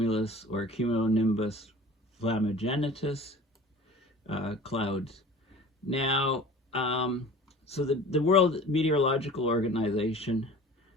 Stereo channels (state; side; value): normal; both; correlation 0.42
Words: or Cumulonimbus Flammagenitus Clouds. Now, so the World Meteorological Organization,